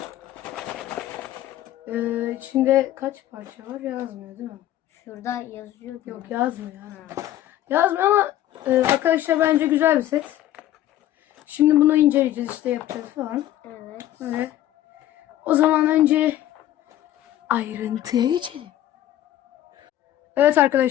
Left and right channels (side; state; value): right; quieter; 13.2 dB